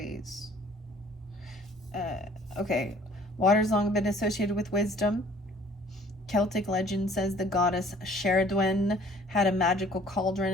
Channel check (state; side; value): normal; both; correlation 0.54